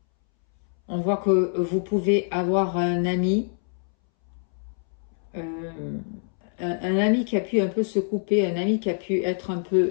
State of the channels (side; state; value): right; silent; 62 dB below the other